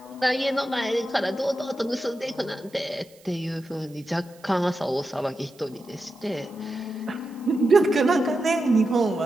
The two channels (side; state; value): right; noise; hiss, 27 dB below the sound